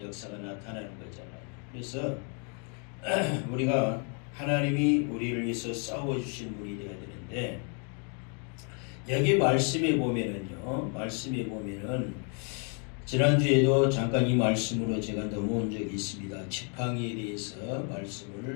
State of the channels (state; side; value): quieter; right; 39.9 dB